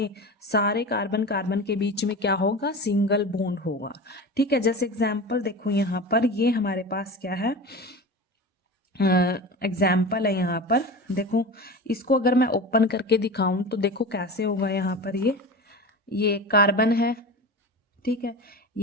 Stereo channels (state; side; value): normal; both; correlation 0.30